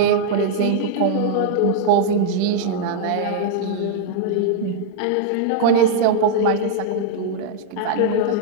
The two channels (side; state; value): both; different; correlation -0.01